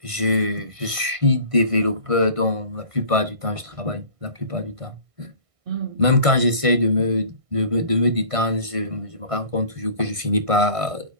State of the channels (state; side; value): late; left; 1.6 ms